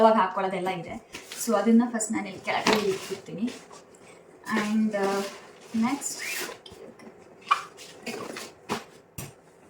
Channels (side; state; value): both; identical; correlation 1.00